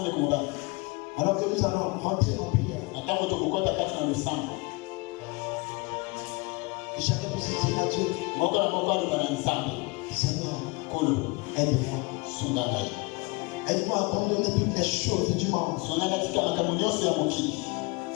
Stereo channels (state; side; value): quieter; right; 27.3 dB